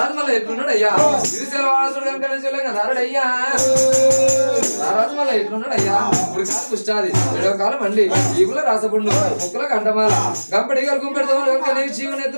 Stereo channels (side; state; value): both; inverted; correlation -1.00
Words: మళ్ళీ ఎట్లున్నాడు అయ్యా శ్రీశైల వాసుడు కనుక రారాడు అయ్యా రారాజు మళ్ళీ ఎట్లున్నాడు అయ్యా ఇప్పుడు కాదు పుష్టాది ఏడవ కాలం అండి ఈగుల రాసపుండు ముక్కుల కంటమాల గంపడి గుంపెడుతో వెనకనే చీవుని